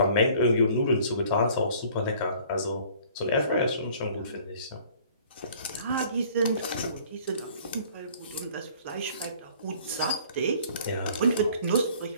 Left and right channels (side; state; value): both; inverted; correlation -0.54